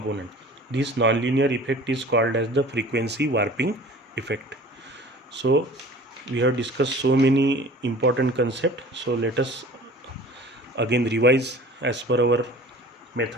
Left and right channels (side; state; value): both; normal; correlation 0.44